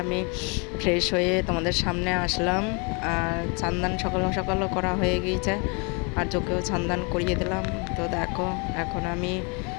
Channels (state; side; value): quieter; right; 33.2 dB